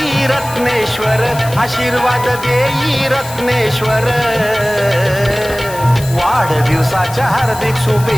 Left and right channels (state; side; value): noise; left; hiss, 14 dB below the sound